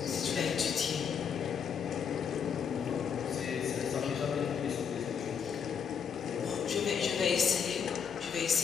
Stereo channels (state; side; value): quieter; right; 7.1 dB